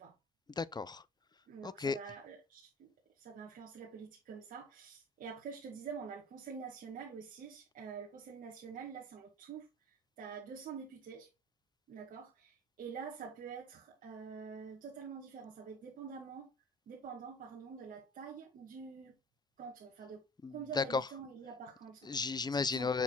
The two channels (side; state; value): both; normal; correlation 0.45